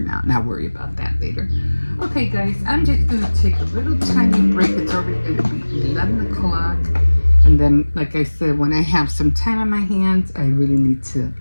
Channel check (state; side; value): inverted; both; correlation -1.00